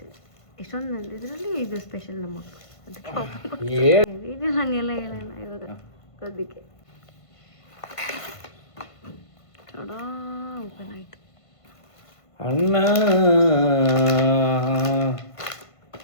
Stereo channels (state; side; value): late; right; 1.5 ms